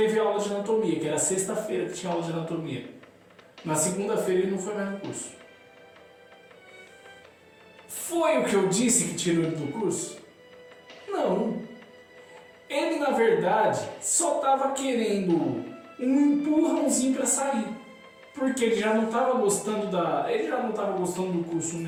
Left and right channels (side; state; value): both; identical; correlation 1.00